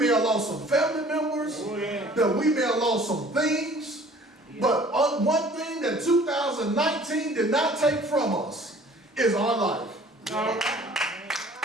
have lost some family members, Oh, yeah. that we may have lost some things. But on one thing that 2019 did not take from us is our life. All right.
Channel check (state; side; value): normal; both; correlation 0.52